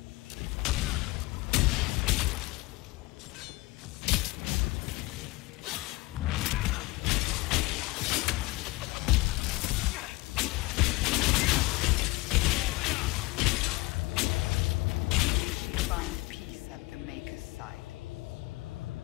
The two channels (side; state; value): right; quieter; 22.2 dB